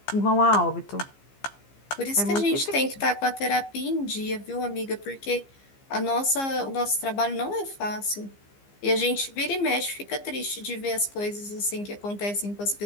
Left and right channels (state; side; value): late; right; 15 ms